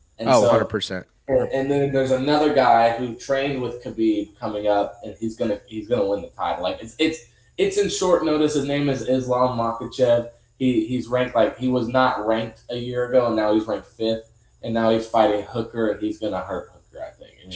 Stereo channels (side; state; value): both; identical; correlation 1.00